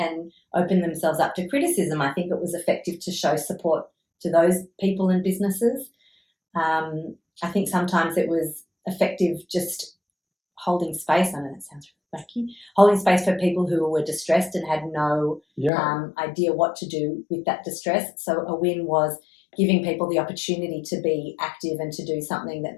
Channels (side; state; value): right; drops out; at 15.7 s